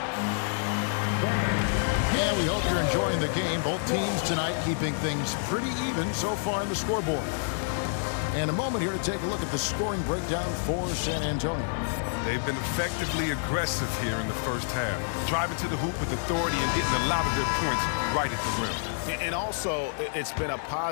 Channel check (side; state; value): right; silent; digital silence